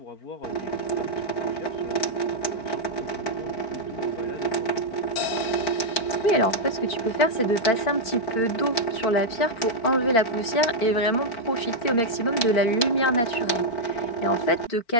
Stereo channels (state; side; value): late; right; 4.5 ms